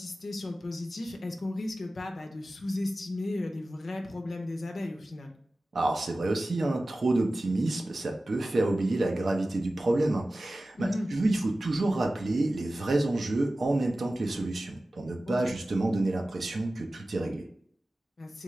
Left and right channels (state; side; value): normal; both; correlation 0.96